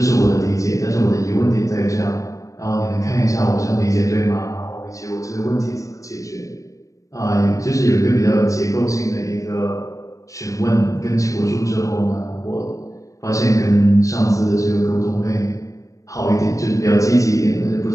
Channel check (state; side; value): late; right; 0.16 ms